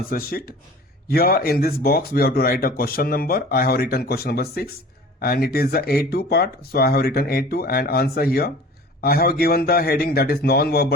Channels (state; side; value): normal; both; correlation 0.43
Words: sheet. Here in this box we have to write a question number. I have written question number 6 and it is the A2 part, so I have written A2 and answer here. I have given the heading that is